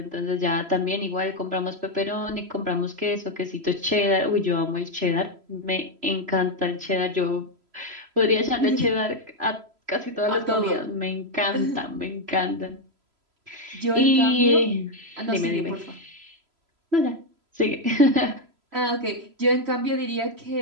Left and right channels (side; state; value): left; late; 3.0 ms